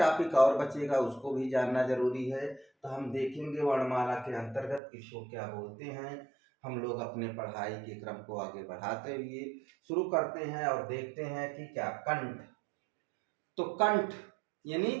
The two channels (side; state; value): left; drops out; at 4.8 s